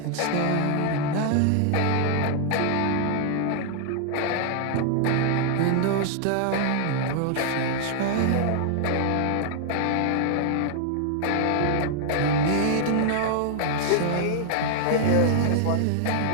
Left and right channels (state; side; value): different; both; correlation 0.00